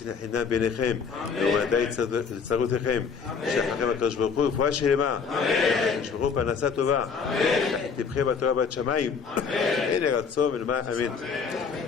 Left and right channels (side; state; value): right; quieter; 5.8 dB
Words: חינם ביניכם, ומדי לצרותיכם, שחכם הקדוש ברוך הוא, רפואה שלמה, ישמרו פרנסה טובה, תבחר בתורה בת שמיים, הנה רצון ולמען אמן.